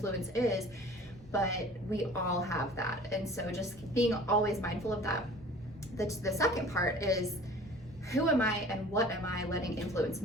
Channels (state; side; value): normal; both; correlation 0.46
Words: is, but we all have that. And so just being always mindful of that. The second part is, who am I and what am I letting influence